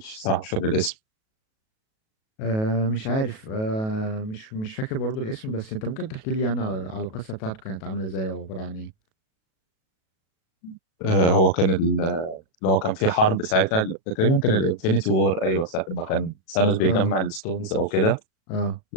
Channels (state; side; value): late; right; 37 ms